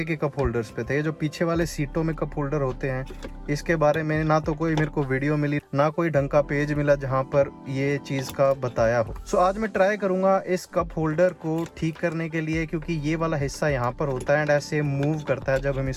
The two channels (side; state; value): both; identical; correlation 1.00